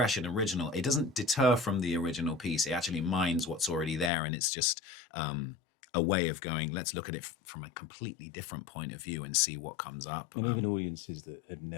and original. It doesn't deter from the original piece. It actually mines what's already there, and it's just a way of going, let's look at it from a completely different point of view and see what comes up. And even audiences that have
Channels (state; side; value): drops out; right; at 4.1 s